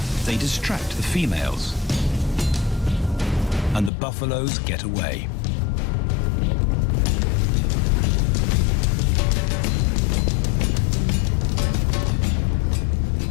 they distract the females, and the buffaloes get away.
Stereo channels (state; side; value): drops out; right; at 3.9 s